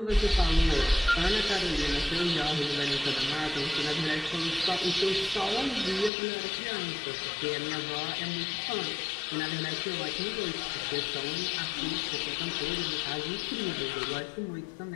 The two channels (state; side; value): drops out; right; at 6.1 s